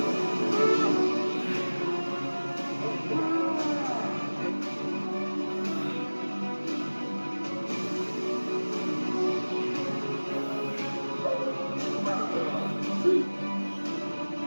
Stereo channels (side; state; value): both; inverted; correlation -1.00